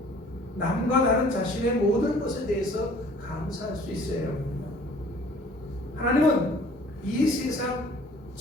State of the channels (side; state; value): both; normal; correlation 0.53